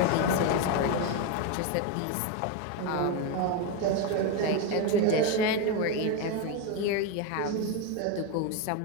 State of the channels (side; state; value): both; different; correlation 0.03